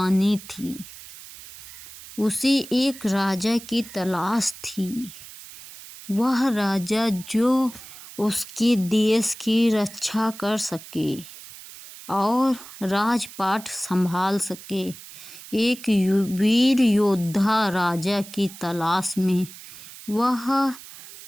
थी। उसे एक राजा की तलाश थी। वह राजा जो उसके देश की रक्षा कर सके और राजपाट संभाल सके। एक वीर योद्धा राजा की तलाश में वह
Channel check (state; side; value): noise; right; hiss, 16 dB below the sound